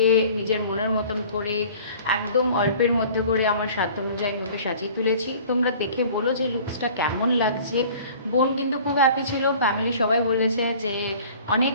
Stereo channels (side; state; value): both; inverted; correlation -0.47